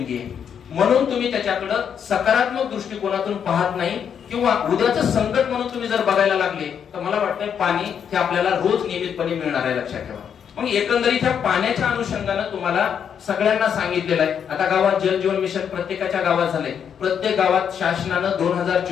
आहे. म्हणून तुम्ही त्याच्याकडे सकारात्मक दृष्टिकोनातून पाहत नाही किंवा उद्याचं संकट म्हणून तुम्ही जर बघायला लागले तर मला वाटतंय पाणी हे आपल्याला रोज नियमितपणे मिळणार आहे, लक्षात ठेवा. मग एकंदरीत ह्या पाण्याच्या अनुषंगाने तुम्हाला सगळ्यांना सांगितलेलं आहे. आता गावात जल जीवन मिशन प्रत्येकाच्या गावात झालंय. प्रत्येक गावात शासनानं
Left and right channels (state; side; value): quieter; right; 7.9 dB